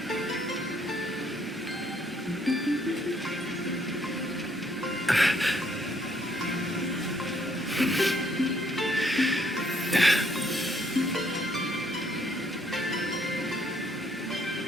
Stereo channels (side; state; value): both; normal; correlation 0.68